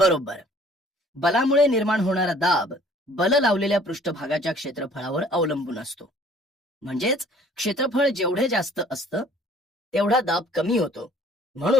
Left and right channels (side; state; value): both; normal; correlation 0.55